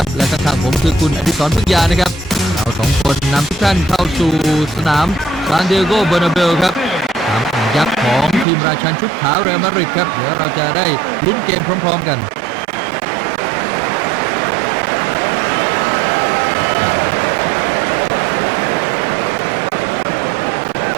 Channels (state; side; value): drops out; left; at 8.5 s